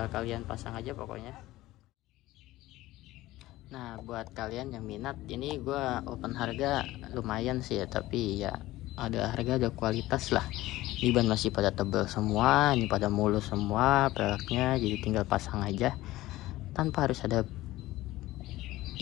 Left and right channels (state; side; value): quieter; right; 17.0 dB